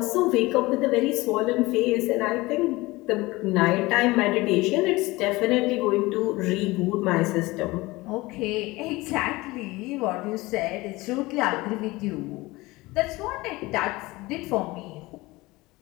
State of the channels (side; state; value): right; quieter; 21.1 dB